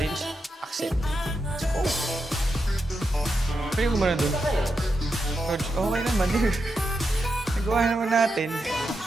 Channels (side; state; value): both; normal; correlation 0.86